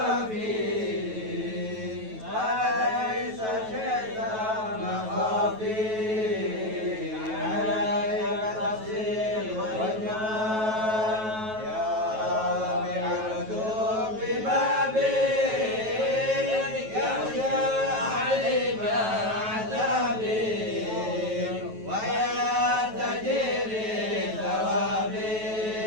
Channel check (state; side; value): late; left; 9.2 ms